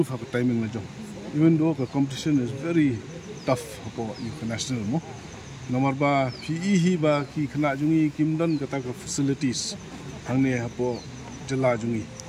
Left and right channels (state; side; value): identical; both; correlation 1.00